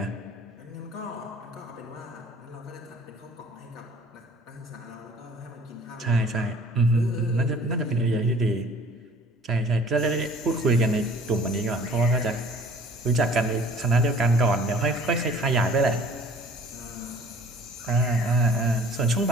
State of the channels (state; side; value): normal; both; correlation 0.51